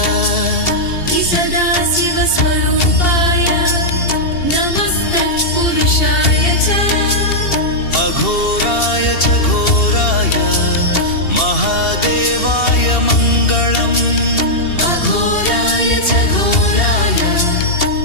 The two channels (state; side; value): late; right; 2.7 ms